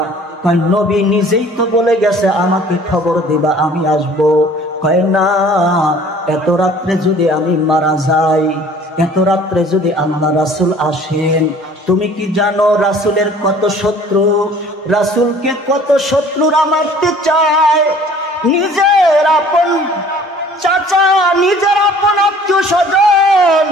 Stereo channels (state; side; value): normal; both; correlation 0.51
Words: কয়, নবী নিজেই তো বলে গেছে আমাকে খবর দিবা, আমি আসব। কয়, না, এত রাত্রে যদি আমি মারা যাই, এত রাত্রে যদি আল্লাহ রাসূল আসেন, তুমি কি জানো রাসূলের কত শত্রু? রাসূলকে কত শত্রুরা মারতে চায়। নিজের আপন চাচা, নিজের আপন আত্মীয় স্বজন,